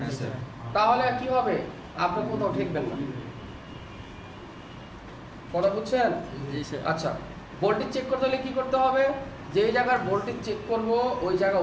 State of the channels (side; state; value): both; identical; correlation 1.00